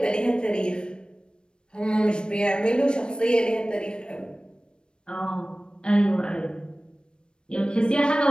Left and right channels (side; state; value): right; late; 0.052 ms